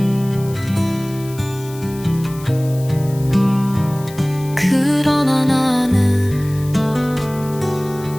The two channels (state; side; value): noise; left; hiss, 19 dB below the sound